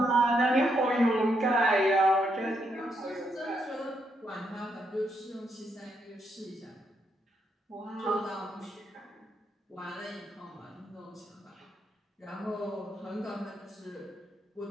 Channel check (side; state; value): both; normal; correlation 0.78